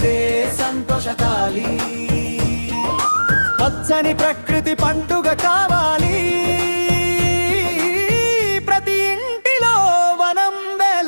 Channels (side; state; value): both; inverted; correlation -1.00